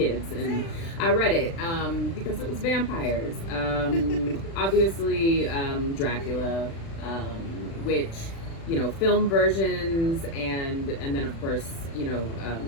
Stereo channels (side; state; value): right; late; 36 ms